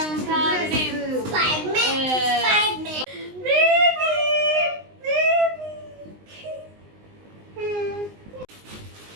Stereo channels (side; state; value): left; late; 19 ms